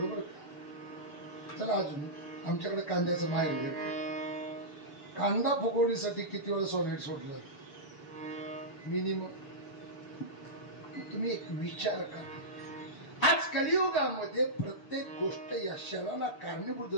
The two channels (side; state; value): right; late; 6.8 ms